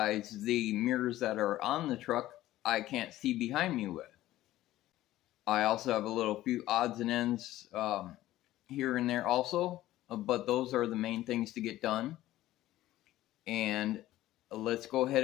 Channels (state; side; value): quieter; right; 15.1 dB